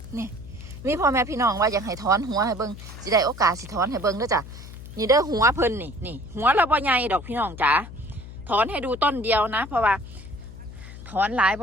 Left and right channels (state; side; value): noise; left; hum, 14 dB below the sound